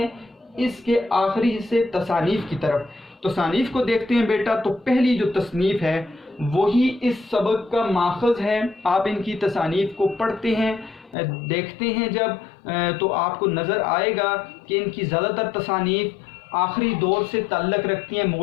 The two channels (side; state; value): right; drops out; at 11.2 s